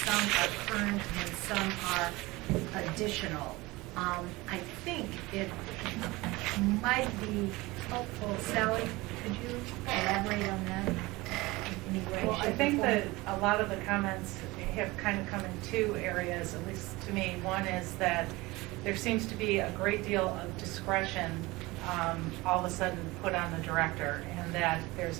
are current and some are additional. I think it might be helpful. Sally, could you elaborate on that in any way? Well, I shape, or think form? that a lot of the comments have kind of come in 2 areas, at least to me. One is that there seems to be a great deal of discretion all of a sudden put on the director, and that there's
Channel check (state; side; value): quieter; left; 21.5 dB